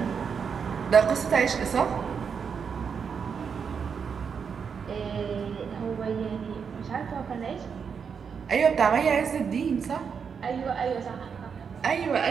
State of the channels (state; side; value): quieter; left; 6.5 dB